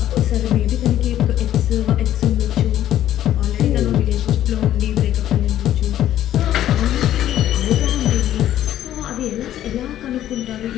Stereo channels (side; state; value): right; quieter; 12.1 dB